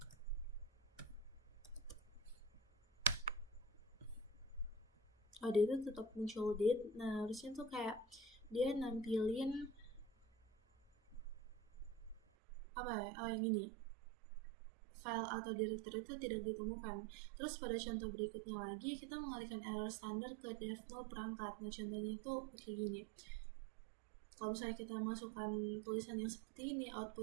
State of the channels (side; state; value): left; drops out; at 12.2 s